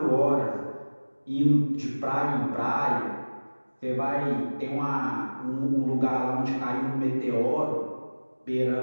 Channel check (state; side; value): inverted; both; correlation -1.00